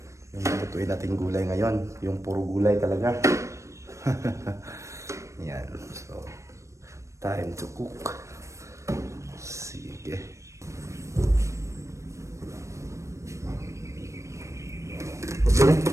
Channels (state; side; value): late; left; 0.15 ms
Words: Yung lutuin natin gulay ngayon, yung puro gulay talaga. Yan, so, time to cook. Sige.